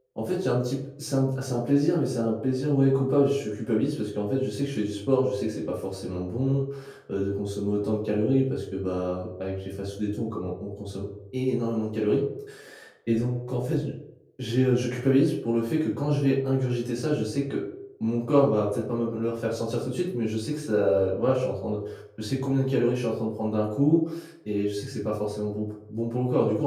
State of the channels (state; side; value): identical; both; correlation 1.00